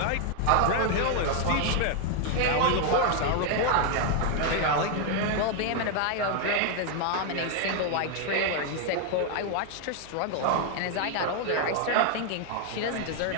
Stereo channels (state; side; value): different; both; correlation 0.00